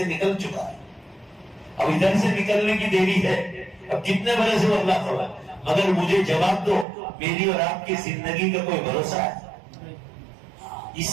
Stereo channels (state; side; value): drops out; left; at 6.9 s